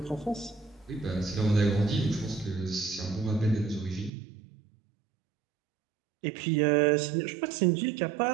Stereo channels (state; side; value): drops out; left; at 4.1 s